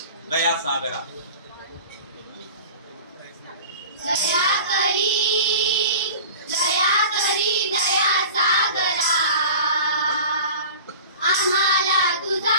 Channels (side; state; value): both; inverted; correlation -0.39